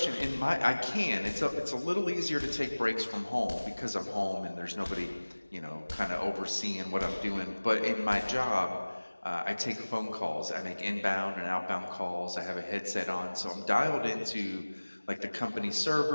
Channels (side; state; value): both; inverted; correlation -1.00